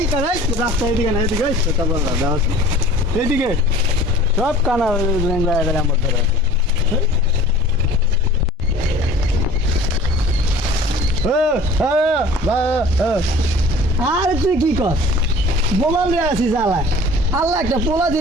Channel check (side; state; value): both; normal; correlation 0.45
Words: কানাই রাস্তা এদিকে না, এদিকে ছোটা বড় দাও এদিকে সব কানা গেলে আমার ধরে আছে। আর তুই কি কর বোমাল রে আছিস আল্লাহ আল্লাহ একটা পোলা